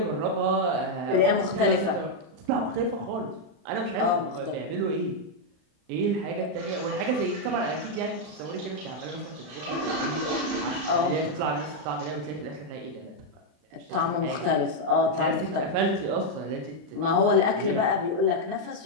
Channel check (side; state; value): left; late; 36 ms